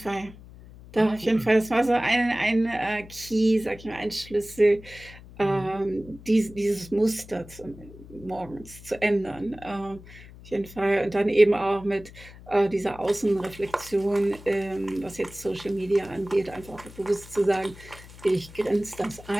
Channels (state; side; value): noise; left; hum, 19 dB below the sound